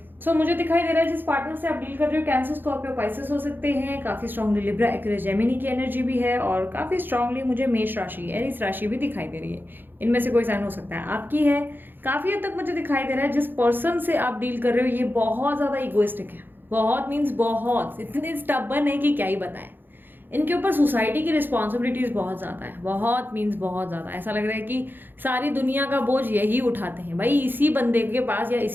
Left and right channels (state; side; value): late; left; 0.095 ms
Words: सो मुझे दिखाई दे रहा है जिस पार्टनर से आप डील कर रहे हो, कैंसर, स्कॉर्पियो, पाइसेस हो सकते हैं। काफी स्ट्रांगली लिब्रा, एक्वेरियस, जेमिनी की एनर्जी भी है, और काफी स्ट्रांगली मुझे मेष राशि, एरीज राशि भी दिखाई दे रही है। इनमें से कोई साइन हो सकता है आपकी है। काफी हद तक मुझे दिखाई दे रहा है जिस पर्सन से आप डील कर रहे हो ये बहुत ज्यादा इगोइस्टिक है। बहुत मीन्स बहुत, इतने स्टबर्न है कि क्या ही बताएं। इनके ऊपर सोसाइटी की रिस्पॉन्सिबिलिटीज बहुत ज़्यादा है, बहुत मीन्स बहुत ज़्यादा। ऐसा लग रहा है कि सारी दुनिया का बोझ यही उठाते हैं भाई, इसी बंदे के पास या